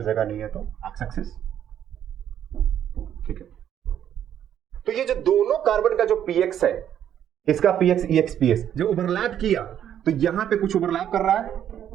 जगह नहीं है तो एक्स एक्सिस। ठीक है, तो ये जो दोनों कार्बन का जो पीएक्स है, इसका पीएक्स ईएक्स पीएस जो ओवरलैप किया, तो यहां पे कुछ ओवरलैप कर रहा है।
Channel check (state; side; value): quieter; left; 10.1 dB